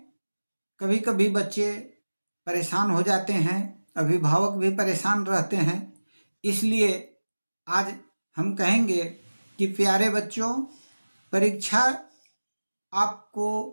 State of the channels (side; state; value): both; inverted; correlation -1.00